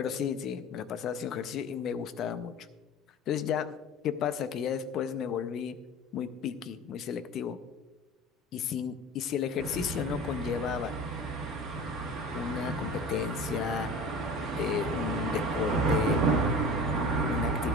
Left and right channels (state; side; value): normal; both; correlation 0.37